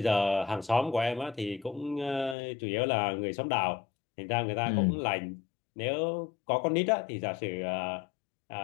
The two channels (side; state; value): right; drops out; at 2.4 s